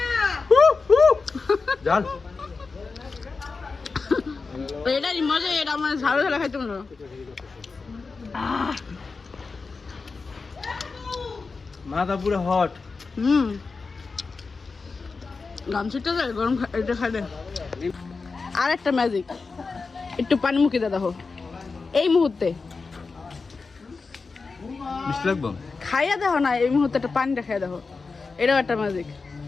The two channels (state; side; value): quieter; right; 4.4 dB